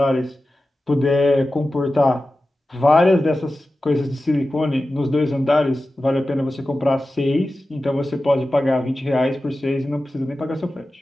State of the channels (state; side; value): normal; both; correlation 0.94